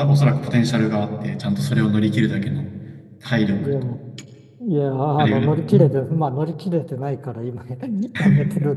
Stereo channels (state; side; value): identical; both; correlation 1.00